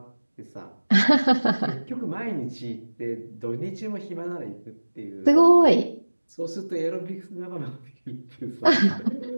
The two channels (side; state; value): both; inverted; correlation -1.00